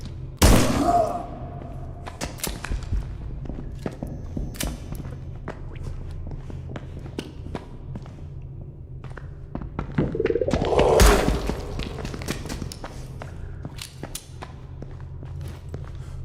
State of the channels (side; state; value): both; identical; correlation 1.00